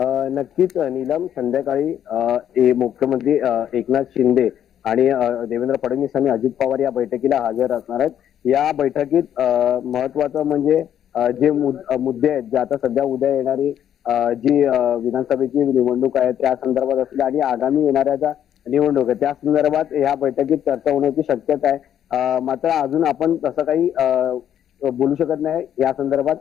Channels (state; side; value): quieter; right; 10.1 dB